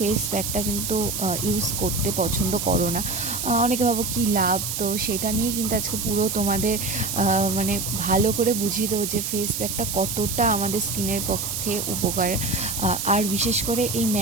প্যাকটা কিন্তু ইউজ করতে পছন্দ করো না। অনেকে ভাবো কী লাভ। তো সেটা নিয়েই কিন্তু আজকে পুরো তোমাদের মানে ভালো করে বুঝিয়ে দেবো যে ফেস প্যাকটা কতটা আমাদের স্কিনের পক্ষে উপকার। আর বিশেষ করে এই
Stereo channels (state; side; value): noise; right; hiss, 3 dB below the sound